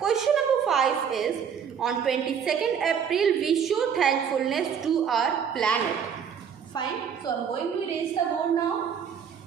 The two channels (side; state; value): left; quieter; 7.5 dB